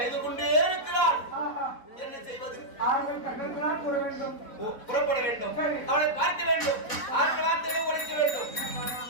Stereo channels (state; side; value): late; right; 4.1 ms